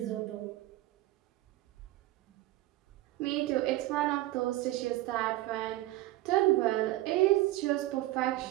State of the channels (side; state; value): left; quieter; 16.9 dB